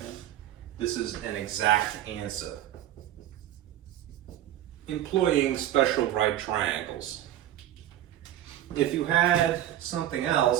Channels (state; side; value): quieter; left; 12.4 dB